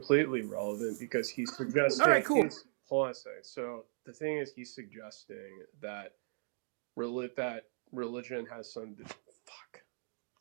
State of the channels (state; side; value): silent; left; digital silence